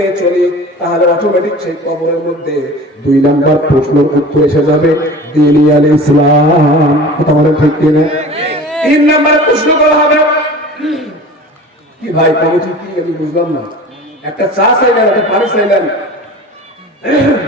চলি, তাহলে অটোমেটিক সেই কবরের মধ্যে দুই নাম্বার প্রশ্নের উত্তর এসে যাবে, দ্বীন আল ইসলাম। কথা বলেন ঠিক কিনা? তিন নাম্বার প্রশ্ন করা হবে কি ভাই, কমিটি কি আমি বুঝলাম না, একটা চা চাইলেন, একটা পানি চাইলেন,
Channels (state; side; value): normal; both; correlation 0.39